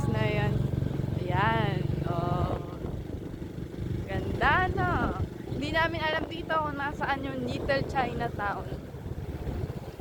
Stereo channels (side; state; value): both; identical; correlation 1.00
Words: na yan. Ayan. Oh. Ganda, no? Hindi namin alam dito kung nasaan yung Little Chinatown.